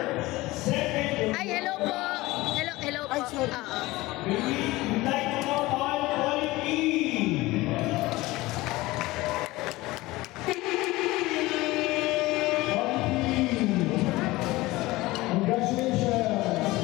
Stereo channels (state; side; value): quieter; right; 19.7 dB